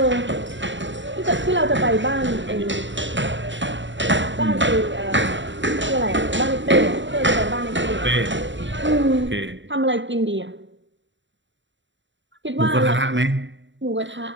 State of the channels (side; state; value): left; late; 0.54 ms